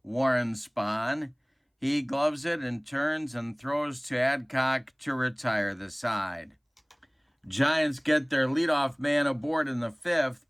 Warren Spahn. He gloves it and turns and throws to Adcock to retire the side. Giants get their leadoff man aboard in the 5th,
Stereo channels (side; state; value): both; identical; correlation 1.00